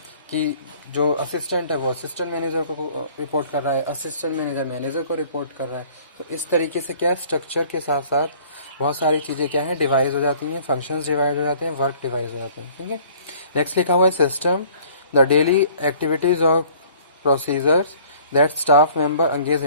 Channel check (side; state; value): both; inverted; correlation -0.53